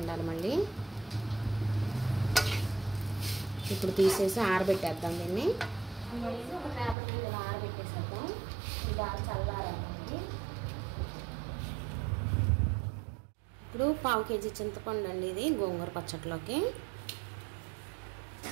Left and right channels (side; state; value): left; drops out; at 7.0 s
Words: మళ్ళీ ఇప్పుడు తీసేసి ఆరబెట్టేద్దాం దీన్ని. ఒక పేపర్ మీద ఇలా ఆరబెట్టేసేద్దాం. ఇది బాగా చల్లారండి. ఇప్పుడు 1/2 కేజీ చింతపండు అండి ఇది గోంగూర పచ్చట్లోకి.